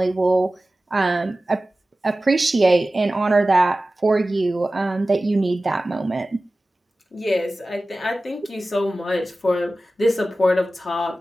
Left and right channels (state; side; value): normal; both; correlation 0.96